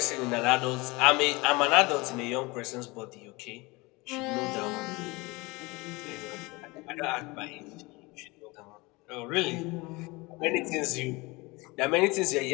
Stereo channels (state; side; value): quieter; right; 24.2 dB